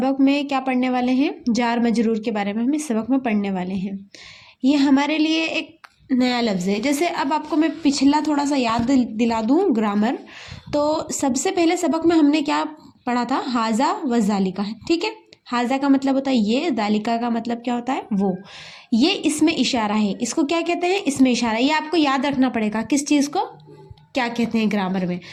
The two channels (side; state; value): both; identical; correlation 1.00